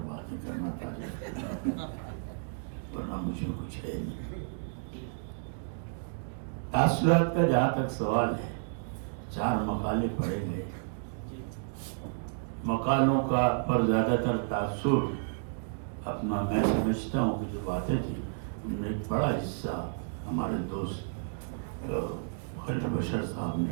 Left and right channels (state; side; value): silent; left; digital silence